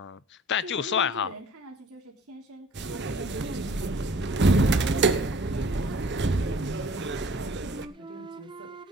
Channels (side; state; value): both; normal; correlation 0.51